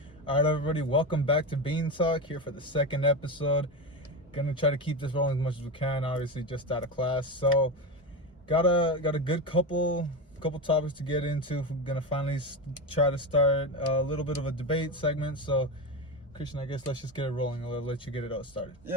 All right, everybody, welcome back to Bean Talk, here for the second episode. Gonna try to keep this rolling as much as we can, obviously just out of class. So got a good couple topics to get into. We're gonna finally try to start a little bit of a debate segment. So Christian, I guess let's just get it rolling. I'll let you get it all started.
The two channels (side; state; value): both; normal; correlation 0.19